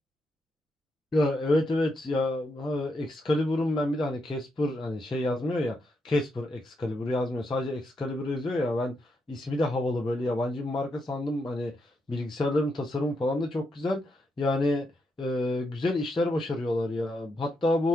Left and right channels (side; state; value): both; normal; correlation 0.82